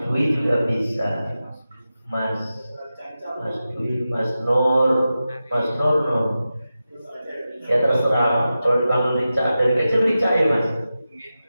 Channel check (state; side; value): inverted; both; correlation -0.93